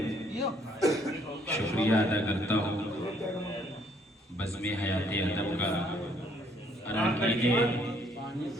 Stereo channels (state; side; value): normal; both; correlation 0.65